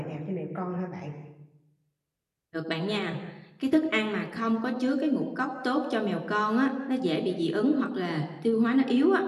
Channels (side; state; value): both; identical; correlation 1.00